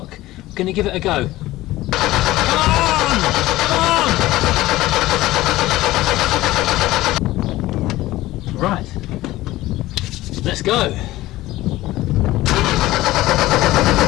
we're going to give it a go. Right, Let's go.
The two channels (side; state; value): right; quieter; 17.0 dB